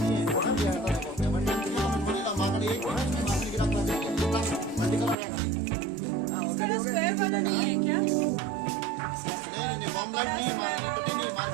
कलर स्क्वायर वाला नहीं है क्या?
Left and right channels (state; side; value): drops out; left; at 5.2 s